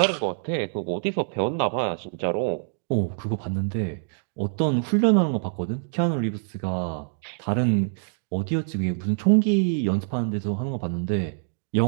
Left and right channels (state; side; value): silent; left; digital silence